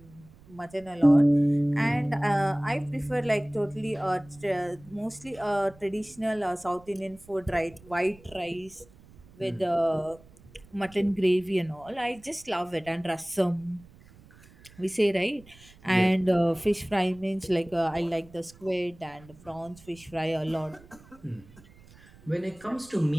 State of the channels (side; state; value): right; noise; rumble, 24 dB below the sound